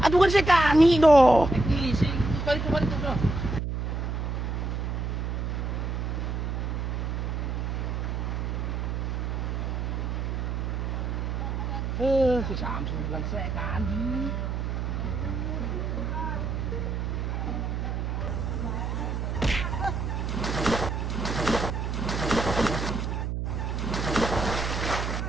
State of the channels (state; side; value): noise; right; hum, 2 dB below the sound